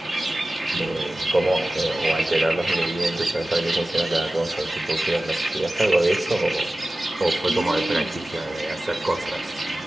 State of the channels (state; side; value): normal; both; correlation 0.96